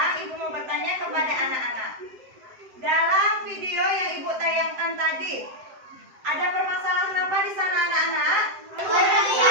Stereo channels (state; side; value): late; left; 7.7 ms